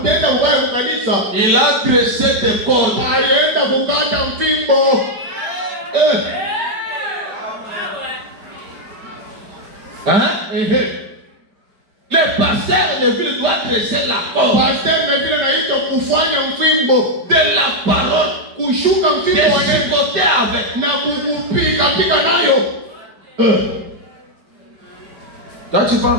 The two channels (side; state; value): left; late; 5.2 ms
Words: ubaya kwa kanisa, il a dressé des cordes. alienda kukata mfimbo. Le pasteur Neville doit dresser la corde Pastor Neville anaitwa kufanya mfimbo, de la parole, kushuka de mfimbo wa Yesu chicoter avec. na kukupiga piga nayo. Toi, tu